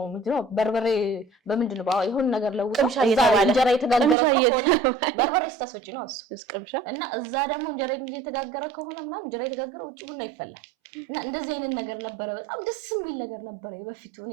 ምንድነው በርበሬ በምንድነው የሆነ ነገር ለውጦ እንጀራ የተጋገረ ከሆነ በርበሬ ስታስፈጭ ነው እሱ እና እዛ ደግሞ እንጀራ የተጋገረ ከሆነ ምናምን እንጀራ የተጋገረ ውጪ ቡና ይፈላል እና እንደዚህ አይነት ነገር ነበረ። በጣም ደስ የሚል ነገር ነበረ በፊቱ። እኔ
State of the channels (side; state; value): left; drops out; at 4.2 s